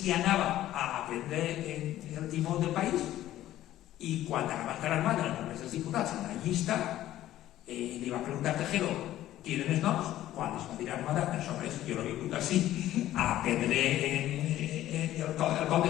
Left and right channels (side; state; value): right; quieter; 13.7 dB